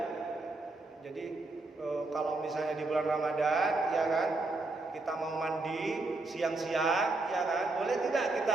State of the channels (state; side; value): quieter; left; 3.2 dB